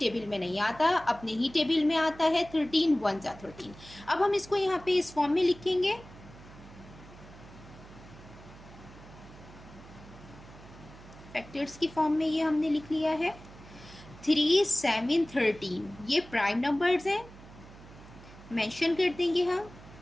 में नहीं आता, अपने ही टेबल में आता है। 13 1 13। अब हम इसको यहाँ पे इस फॉर्म में लिखेंगे। फैक्टर्स की फॉर्म में ये हमने लिख लिया है। 3, 7, 13 ये प्राइम नंबर्स हैं, मेंशन कर देंगे हम।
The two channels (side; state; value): right; noise; hum, 19 dB below the sound